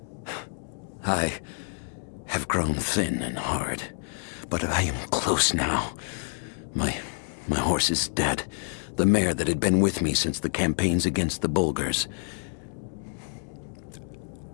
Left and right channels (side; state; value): right; silent; digital silence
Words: I have grown thin and hard, but I am close now. My horse is dead. The mare that had been with me since the campaigns against the Bulgars.